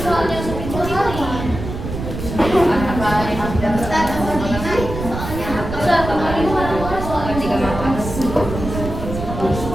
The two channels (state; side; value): noise; right; rumble, 7 dB below the sound